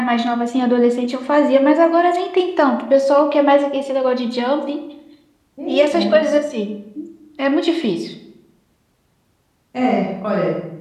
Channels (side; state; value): both; identical; correlation 1.00